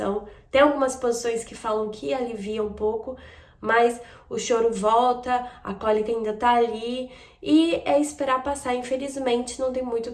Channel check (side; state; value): both; identical; correlation 1.00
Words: Tem algumas posições que falam que alivia um pouco, mas o choro volta, a cólica ainda tá ali e é esperar passar. Infelizmente, não tem muito o